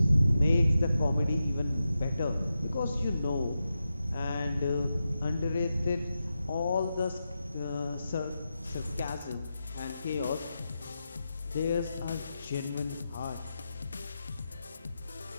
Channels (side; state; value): both; inverted; correlation -0.89